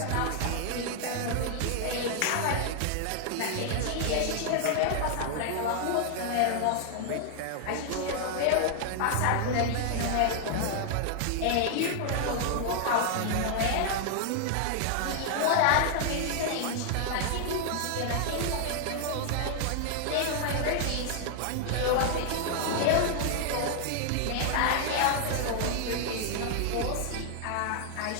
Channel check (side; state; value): both; different; correlation 0.00